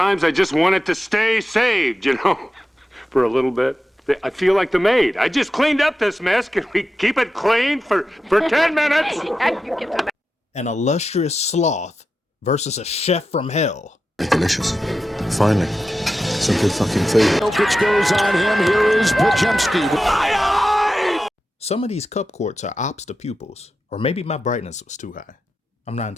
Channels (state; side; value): normal; both; correlation 0.91